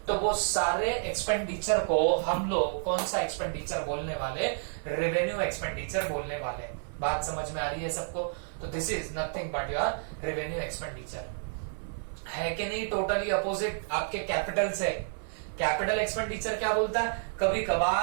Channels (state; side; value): silent; left; 58 dB below the other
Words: तो वो सारे एक्सपेंडिचर को हम लोग कौन सा एक्सपेंडिचर बोलने वाले, रेवेन्यू एक्सपेंडिचर बोलने वाले। बात समझ में आ रही है सबको? तो this is nothing but your revenue expenditure, है कि नहीं? टोटली अपोजिट आपके कैपिटल से। कैपिटल एक्सपेंडिचर क्या बोलता है, कभी